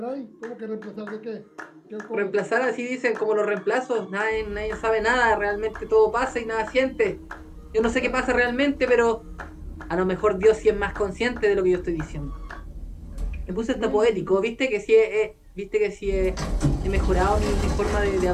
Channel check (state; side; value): identical; both; correlation 1.00